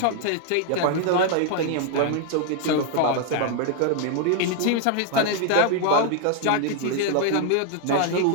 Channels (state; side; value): different; both; correlation 0.00